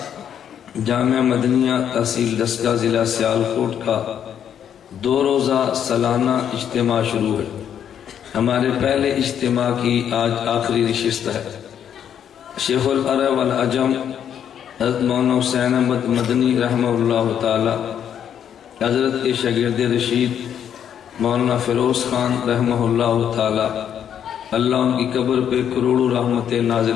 جامعہ مدنیہ تحصیل دسکا ضلع سیالکوٹ کا 2 روزہ سالانہ اجتماع شروع ہے ہمارے پہلے اجتماع کی آج آخری نشست ہے شیخ العرب والعجم حضرت مولانا حسین احمد مدنی رحمہ اللہ تعالی حضرت کے شاگرد رشید مولانا فیروز خان رحمہ اللہ تعالی اللہ ان کی قبر پہ کروڑوں رحمتیں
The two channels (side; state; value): right; quieter; 9.1 dB